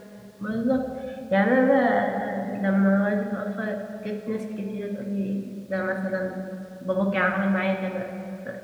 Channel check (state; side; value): identical; both; correlation 1.00